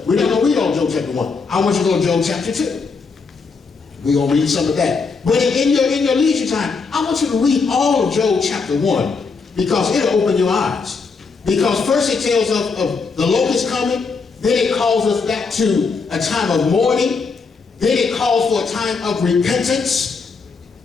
We're not going to read all Job chapter 1. I want you to go to Job chapter 2. We're going to read some of that. But in your leisure time, I want you to read all of Job chapter 1, because it'll open your eyes. Because first it tells of the locust coming, then it calls us back to a time of mourning, then it calls for a time of repentance,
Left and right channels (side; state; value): right; quieter; 4.7 dB